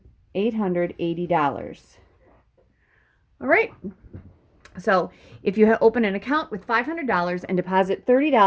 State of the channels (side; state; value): both; identical; correlation 1.00